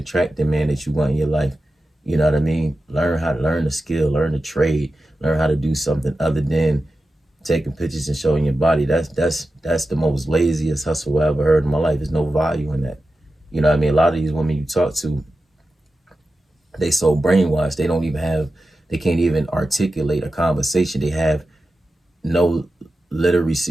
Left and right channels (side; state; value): both; normal; correlation 0.92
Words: the man that you want in your life. You know what I mean? Learn a skill, learn a trade, learn how to do something other than taking pictures and showing your body. That's the most laziest hustle I ever heard in my life. There's no value in that. You know what I mean? A lot of these women you talk to, they so brainwashed, they can't even articulate a conversation. They have no